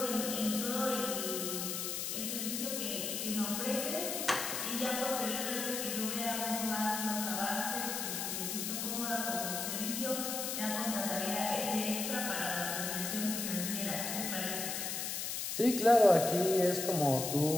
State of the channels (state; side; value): noise; left; hiss, 2 dB below the sound